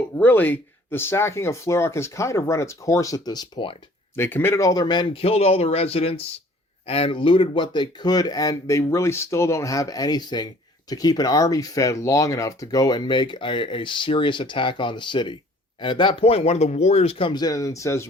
really, the sacking of Flurrock has kind of run its course at this point. They committed all their men, killed all the residents, and looted what they could, and they really still don't have anything to keep an army fed long enough to go and make a serious attack on the city. And at that point, one of the warriors comes in and says,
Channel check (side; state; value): both; normal; correlation 0.54